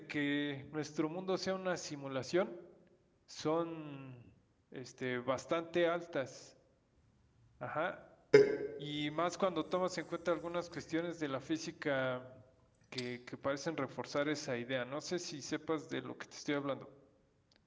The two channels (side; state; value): both; identical; correlation 1.00